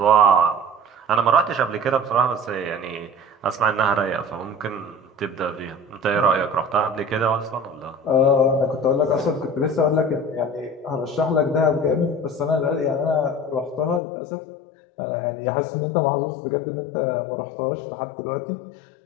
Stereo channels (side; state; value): right; drops out; at 14.0 s